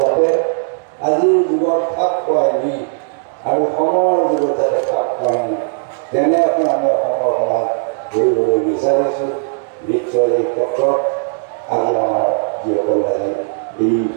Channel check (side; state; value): left; silent; 68 dB below the other